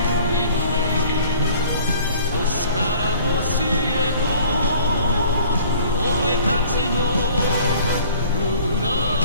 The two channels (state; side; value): inverted; both; correlation -0.51